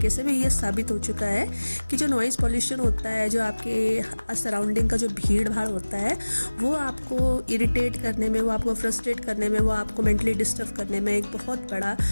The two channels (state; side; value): inverted; both; correlation -1.00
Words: से भी ये साबित हो चुका है कि जो नॉइज़ पॉल्यूशन होता है, जो आपके सराउंडिंग का जो भीड़ भाड़ होता है, वो आपको इरिटेट करने में, वो आपको फ्रस्ट्रेट करने में, वो आपको मेंटली डिस्टर्ब करने में एक बहुत बड़ा